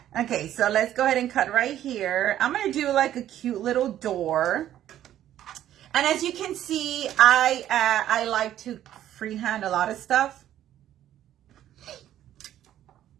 Okay, so let's go ahead and cut right here. I'm going to do like a cute little door. And as you can see, I like to freehand a lot of stuff.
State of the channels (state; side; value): quieter; left; 11.9 dB